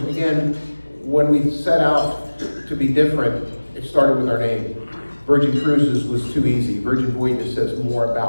Again, when we set out to be different, it started with our name. Virgin Cruises was too easy. Virgin Voyages says more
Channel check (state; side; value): inverted; both; correlation -1.00